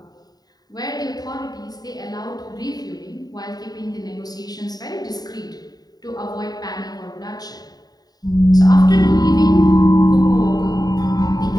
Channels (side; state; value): right; late; 0.19 ms